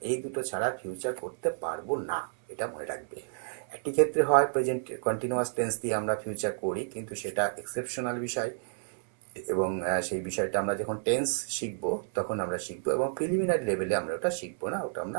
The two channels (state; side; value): silent; left; 57 dB below the other